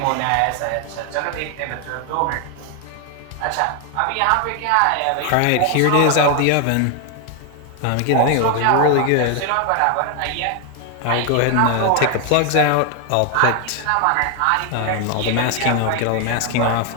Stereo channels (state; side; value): different; both; correlation 0.01